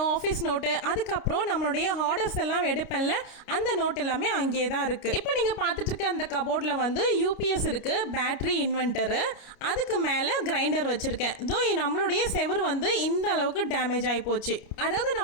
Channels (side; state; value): right; late; 29 ms